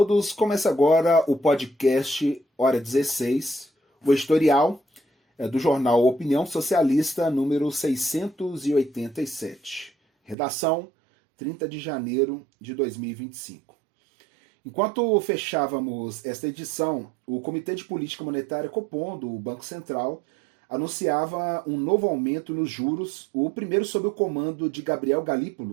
começa agora o podcast Hora 16, o editorial do jornal Opinião Socialista, número 687. Redação, 30 de janeiro de 2025. Enquanto fechávamos esta edição, o Comitê de Política Monetária Copom, do Banco Central, anunciava um novo aumento nos juros, o primeiro sob o comando de Gabriel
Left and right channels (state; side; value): drops out; left; at 10.4 s